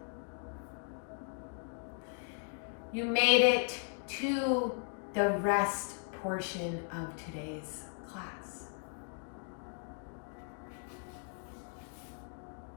You made it to the rest portion of today's class.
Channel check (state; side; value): silent; right; 53 dB below the other